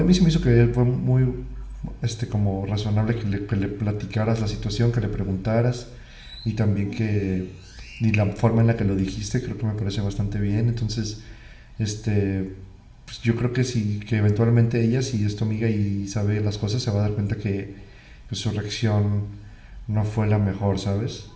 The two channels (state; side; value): identical; both; correlation 1.00